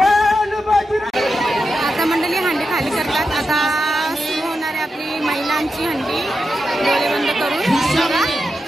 आता मंडळी हंडी खाली करतात. आता सुरू होणार आहे आपली महिलांची हंडी. डोळे बंद करून खाली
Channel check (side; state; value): both; normal; correlation 0.88